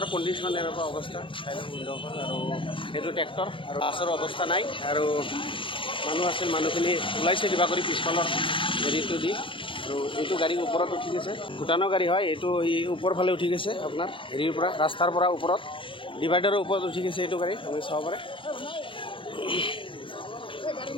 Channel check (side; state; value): right; late; 0.25 ms